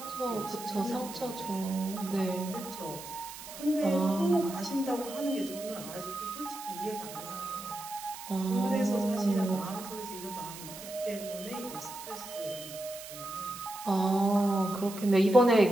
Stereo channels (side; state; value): right; noise; hiss, 13 dB below the sound